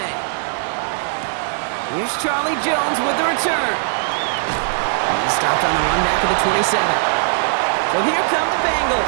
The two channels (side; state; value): left; silent; digital silence